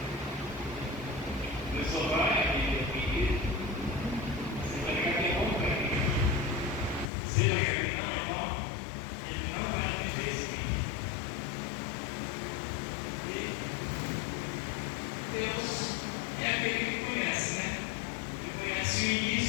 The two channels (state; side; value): drops out; right; at 7.1 s